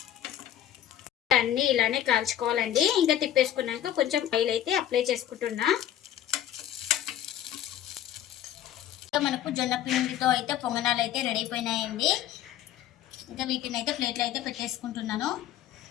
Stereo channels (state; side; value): quieter; right; 11.2 dB